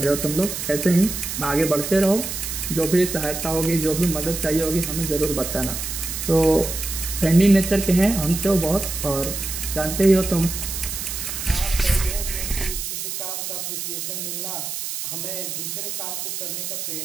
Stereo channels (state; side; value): noise; right; hiss, 5 dB below the sound